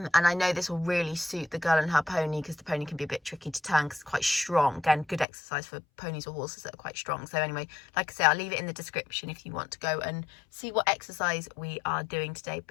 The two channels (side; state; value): right; drops out; at 5.2 s